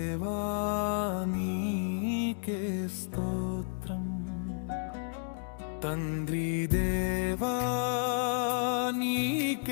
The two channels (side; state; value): right; silent; digital silence